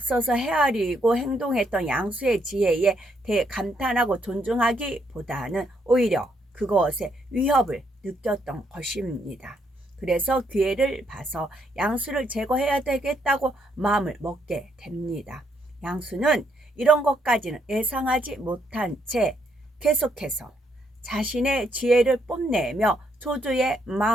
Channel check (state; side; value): normal; both; correlation 0.74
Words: 헤아리고 행동했던 양수의 지혜에 대해 감탄하고 존중하기보다는 오히려 그것에 위협을 느꼈던 것입니다. 그래서 기회를 봐서 양수를 제거해야 되겠다고 마음을 먹게 됩니다. 양수는 이런 것까지는 예상하지 못한 채 계속해서 자신의 지혜를 뽐내며 조조의